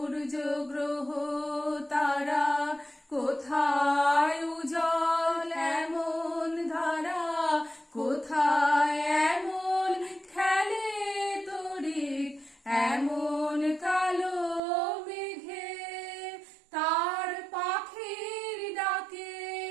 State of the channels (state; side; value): drops out; left; at 14.6 s